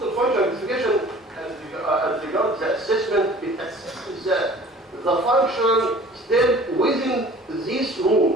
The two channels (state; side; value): normal; both; correlation 0.47